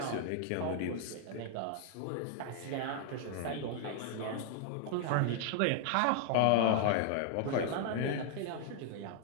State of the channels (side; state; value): both; different; correlation 0.00